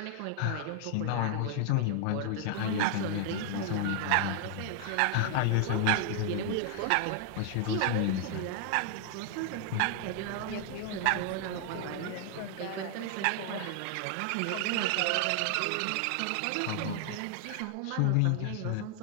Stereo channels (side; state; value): both; different; correlation 0.00